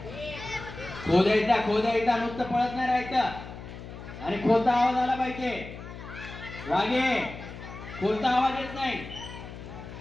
खोदायचा नुसतं पळत नाही राहायचं. आणि खोलता आवाज आला पाहिजे. वागे खोलता आवाज येत नाही.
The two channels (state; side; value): noise; left; hum, 12 dB below the sound